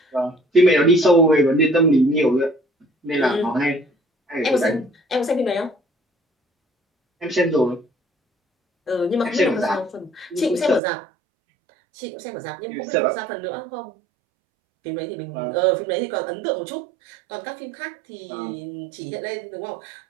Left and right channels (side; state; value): left; drops out; at 10.8 s